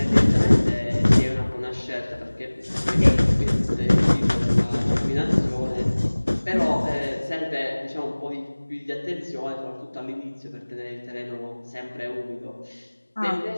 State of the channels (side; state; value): both; inverted; correlation -1.00